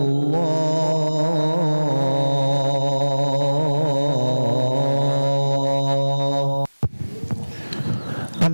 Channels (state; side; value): inverted; both; correlation -1.00